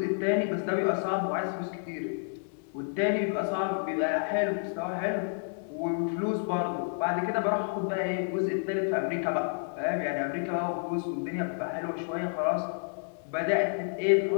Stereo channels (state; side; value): silent; right; digital silence